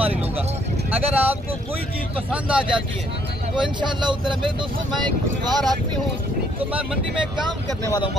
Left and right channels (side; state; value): both; normal; correlation 0.67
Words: लूँगा। अगर आपको कोई चीज़ पसंद आ जाती है तो इंशाअल्लाह उधर मेरे दोस्तों मैं एक बार आदमी हूँ, तो मैं मंडी में काम करने वाला हूँ